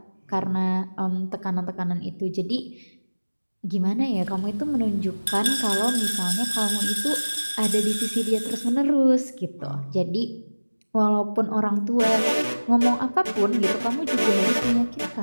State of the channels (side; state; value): both; inverted; correlation -1.00